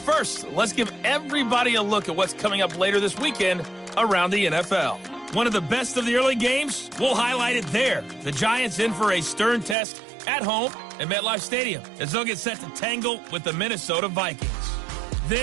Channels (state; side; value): drops out; left; at 9.8 s